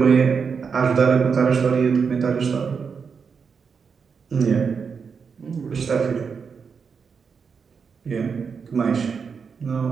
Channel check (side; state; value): left; quieter; 5.9 dB